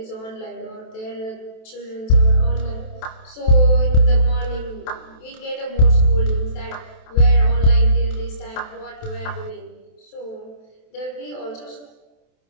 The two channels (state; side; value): late; right; 27 ms